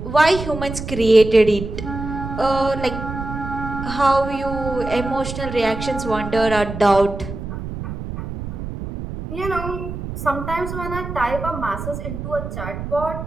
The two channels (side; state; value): right; noise; rumble, 7 dB below the sound